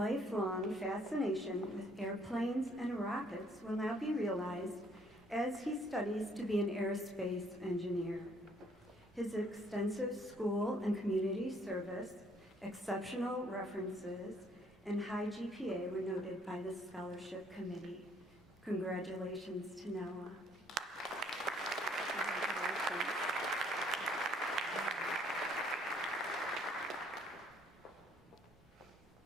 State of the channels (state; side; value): normal; both; correlation 0.64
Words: fascination with airplanes and rockets will now be realized as he studies to be an aerospace engineer. His extensive school and community service, exceptional references, and high GPA were noted by the scholarship committee. Congratulations to Noah.